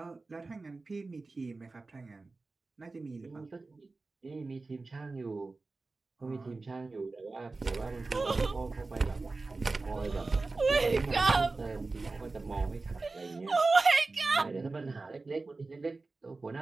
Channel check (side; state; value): left; quieter; 3.6 dB